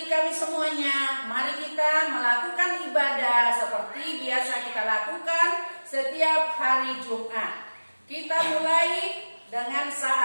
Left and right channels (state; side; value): inverted; both; correlation -1.00